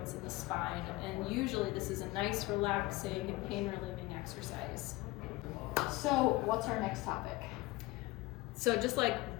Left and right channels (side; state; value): right; quieter; 19.9 dB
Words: and the spine, and usually this is a nice, relaxing, and pain-relieving exercise. So what's our next topic? So just like